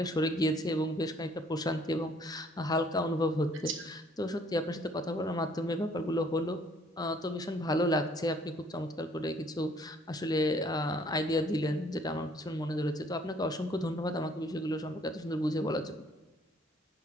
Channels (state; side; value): normal; both; correlation 0.61